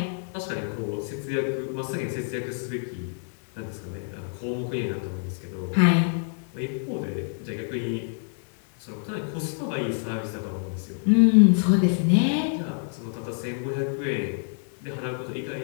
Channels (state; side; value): silent; right; 60 dB below the other